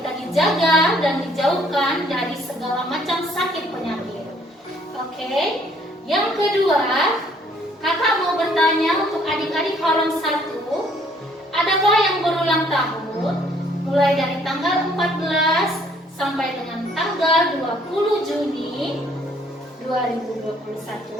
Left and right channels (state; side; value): normal; both; correlation 0.63